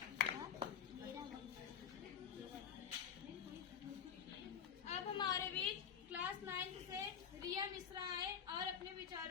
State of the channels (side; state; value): right; quieter; 8.1 dB